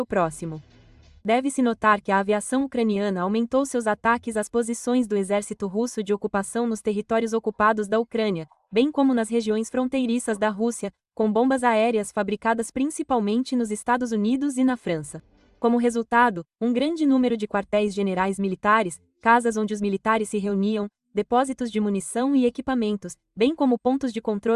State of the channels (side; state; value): both; identical; correlation 1.00